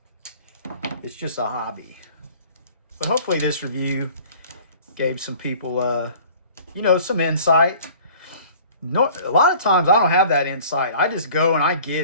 It's just a hobby. But hopefully this review gave some people, you know, some insight. No, a lot of times I don't have that insight. I just go and I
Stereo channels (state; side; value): inverted; both; correlation -0.49